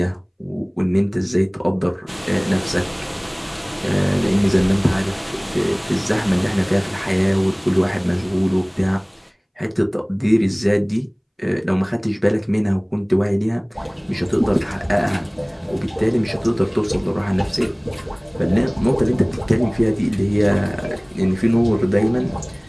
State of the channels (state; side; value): identical; both; correlation 1.00